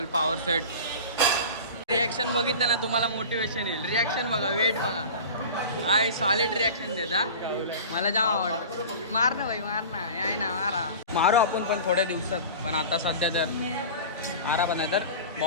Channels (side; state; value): both; inverted; correlation -0.35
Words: पॉवर सेट. रिॲक्शन बघितलं ना तुम्हाला मोटिवेशन येईल. रिॲक्शन बघा, वेट बघा, काय सॉलिड रिॲक्शन देता. मला जाम आवडतं. मार ना भाई, मार ना, याय ना, मारा. मारू आपण पण थोड्या दिवसात, पण आता सध्या तर आरा बना तर